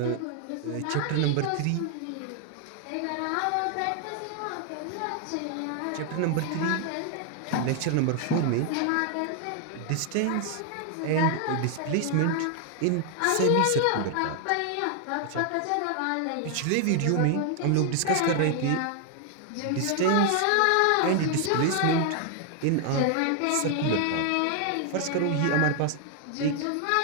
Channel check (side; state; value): both; different; correlation 0.00